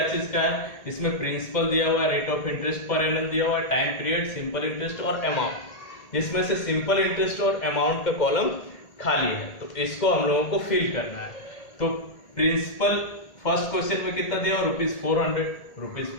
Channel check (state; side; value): late; right; 1.8 ms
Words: चीज का है, इसमें प्रिंसिपल दिया हुआ है, rate of interest per annum दिया हुआ है, टाइम पीरियड, सिंपल इंटरेस्ट और अमाउंट। जिसमें से सिंपल इंटरेस्ट और अमाउंट का कॉलम खाली है, तो इसको हम लोगों को फिल करना है। तो प्रिंसिपल फर्स्ट क्वेश्चन में कितना दिया